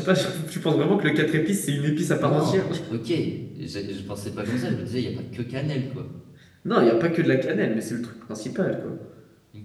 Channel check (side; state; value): both; identical; correlation 1.00